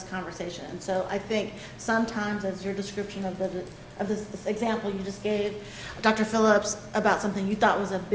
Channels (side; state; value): both; identical; correlation 1.00